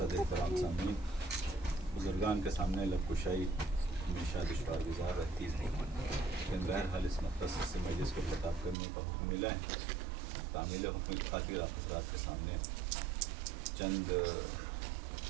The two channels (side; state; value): left; drops out; at 8.8 s